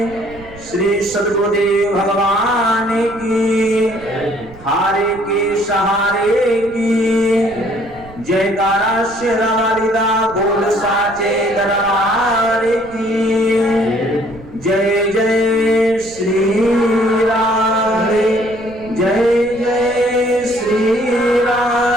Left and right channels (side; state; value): right; noise; rumble, 20 dB below the sound